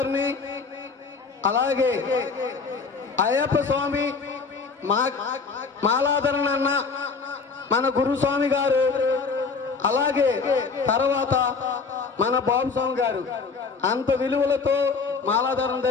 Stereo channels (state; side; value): quieter; right; 4.8 dB